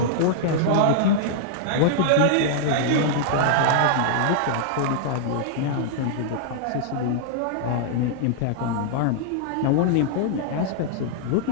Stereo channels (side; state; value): both; different; correlation -0.01